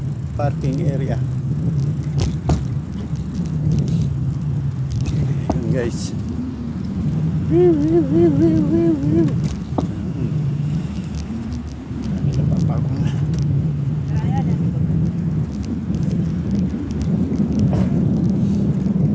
area. Yun, guys.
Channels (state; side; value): identical; both; correlation 1.00